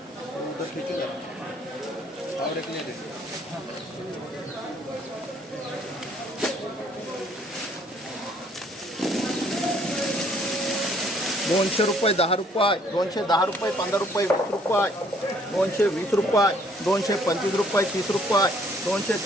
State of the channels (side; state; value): both; normal; correlation 0.63